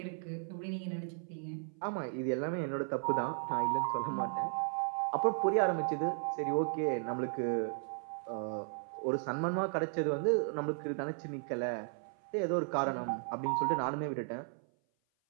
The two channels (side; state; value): left; silent; 54 dB below the other